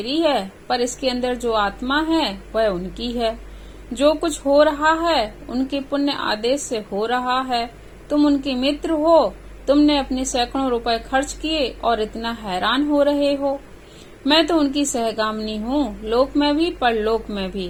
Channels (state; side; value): identical; both; correlation 1.00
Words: है, पर इसके अंदर जो आत्मा है वह उनकी है। जो कुछ हो रहा है उनके पुण्य आदेश से हो रहा है। तुम उनके मित्र हो, तुमने अपने सैकड़ों रुपए खर्च किए और इतना हैरान हो रहे हो। मैं तो उनकी सहगामिनी हूँ, लोक में भी परलोक में